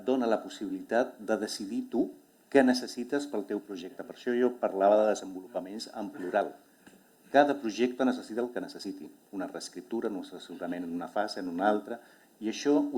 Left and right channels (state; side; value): identical; both; correlation 1.00